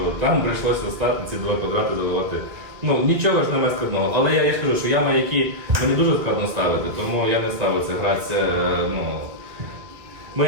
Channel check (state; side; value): late; left; 2.4 ms